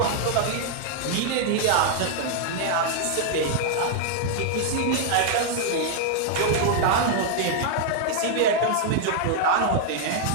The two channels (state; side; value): different; both; correlation -0.01